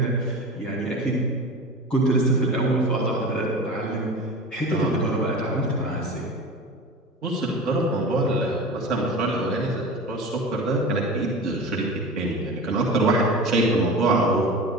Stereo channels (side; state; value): both; normal; correlation 0.32